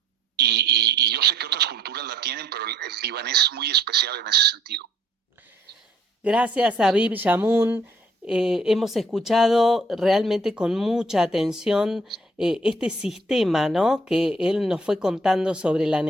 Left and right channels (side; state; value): both; normal; correlation 0.62